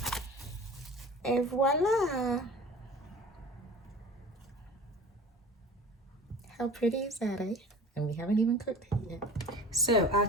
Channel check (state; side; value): normal; both; correlation 0.41